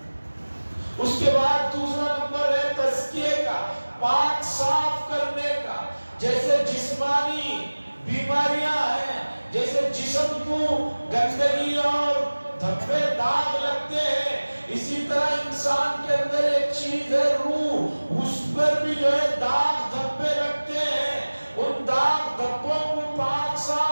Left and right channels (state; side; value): inverted; both; correlation -1.00